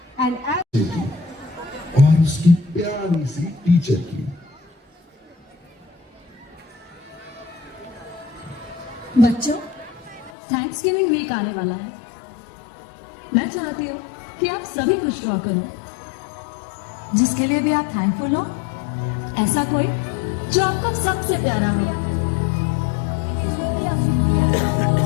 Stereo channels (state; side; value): drops out; right; at 10.3 s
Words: and और उसकी प्यारी सी teacher की। बच्चों, thanks giving week आने वाला है। मैं चाहती हूँ कि आप सभी कुछ ड्रॉ करो जिसके लिए भी आप थैंकफुल हो। ऐसा कोई जो आपको सबसे प्यारा हो।